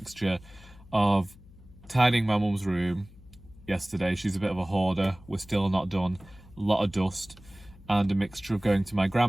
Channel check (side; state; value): left; noise; hum, 22 dB below the sound